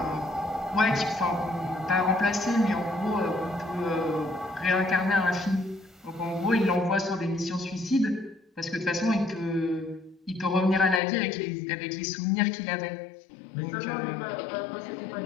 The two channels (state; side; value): drops out; right; at 11.0 s